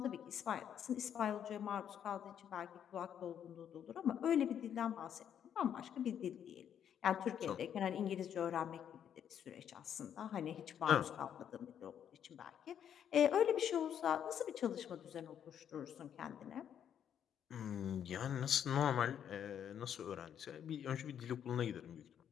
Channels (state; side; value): quieter; right; 9.1 dB